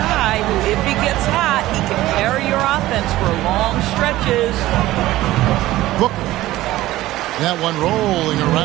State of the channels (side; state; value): left; quieter; 16.2 dB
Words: who, if he gets hot, he can carry your offense for long stretches. Booker. That one rolling